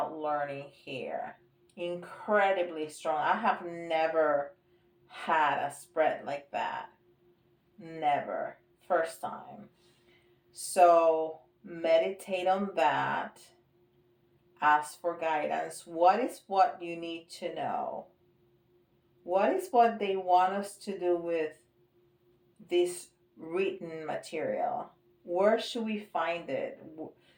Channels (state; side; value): identical; both; correlation 1.00